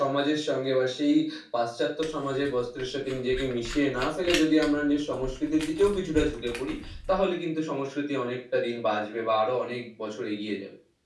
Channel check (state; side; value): identical; both; correlation 1.00